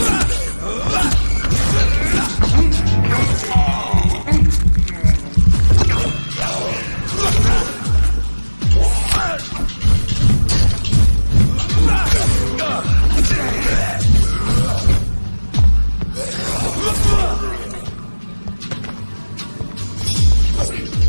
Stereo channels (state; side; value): inverted; both; correlation -1.00